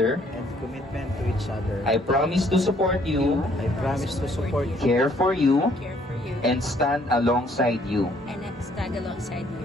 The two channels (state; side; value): normal; both; correlation 0.64